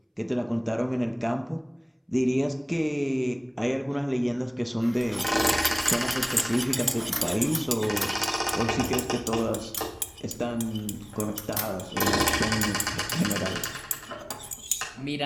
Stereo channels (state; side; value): identical; both; correlation 1.00